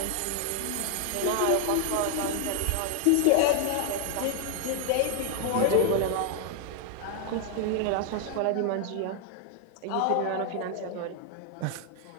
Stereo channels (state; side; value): different; both; correlation 0.01